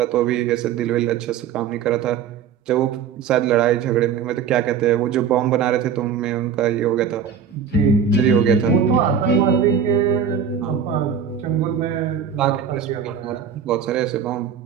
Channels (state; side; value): quieter; left; 7.5 dB